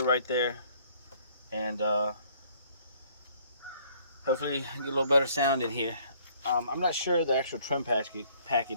right there, and hopefully get a little better sound in here. I'm not sure the actual trim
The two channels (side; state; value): both; inverted; correlation -0.61